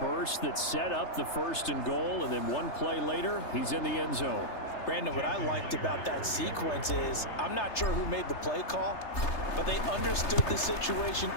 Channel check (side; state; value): right; late; 3.3 ms